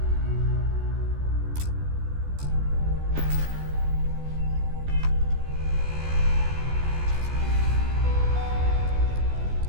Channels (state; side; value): late; left; 14 ms